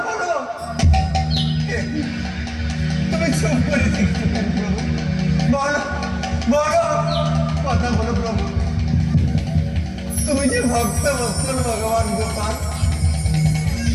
বলো। তুমি চুপ করে দেখতে পারো। ভক্ত বৎসল ভগবান গোপাল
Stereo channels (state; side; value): identical; both; correlation 1.00